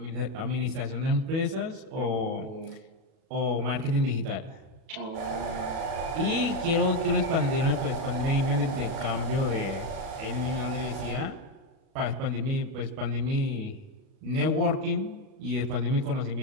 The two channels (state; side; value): late; left; 37 ms